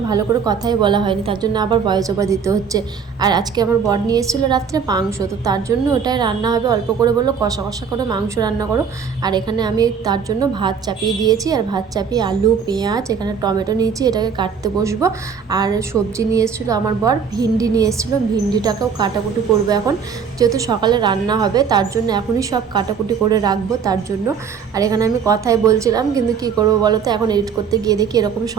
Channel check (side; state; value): left; quieter; 6.5 dB